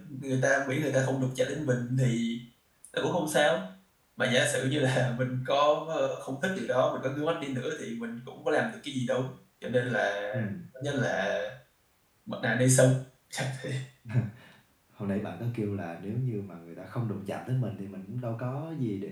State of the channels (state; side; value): identical; both; correlation 1.00